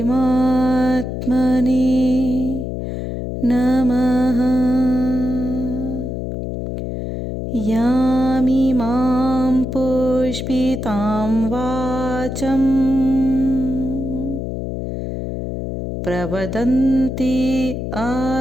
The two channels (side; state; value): left; noise; hum, 5 dB below the sound